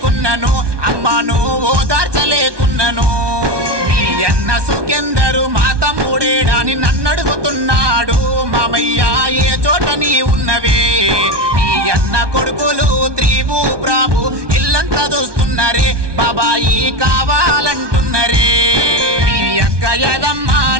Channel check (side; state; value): left; late; 1.2 ms